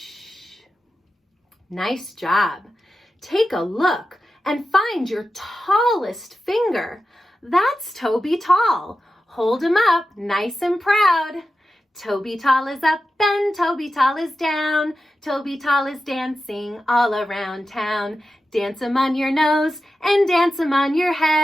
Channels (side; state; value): both; normal; correlation 0.92